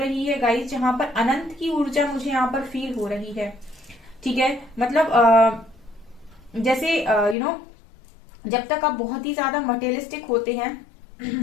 है गाइस, जहां पर अनंत की ऊर्जा मुझे यहाँ पर फील हो रही है। ठीक है, मतलब जैसे जब तक आप बहुत ही ज्यादा मटेरियलिस्टिक होते हैं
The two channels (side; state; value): right; drops out; at 7.4 s